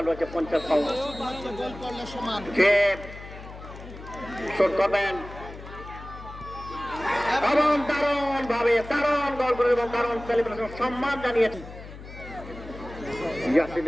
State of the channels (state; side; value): noise; left; hum, 14 dB below the sound